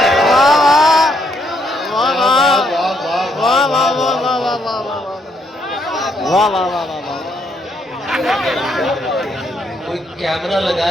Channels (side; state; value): both; normal; correlation 0.73